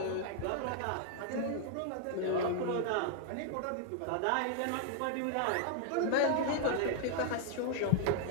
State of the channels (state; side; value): different; both; correlation 0.00